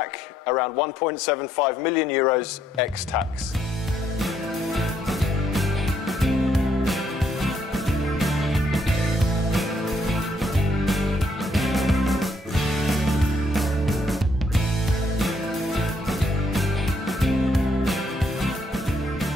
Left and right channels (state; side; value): normal; both; correlation 0.72